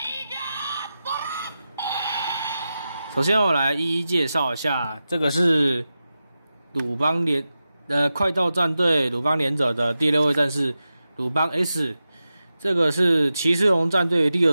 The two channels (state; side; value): inverted; both; correlation -0.92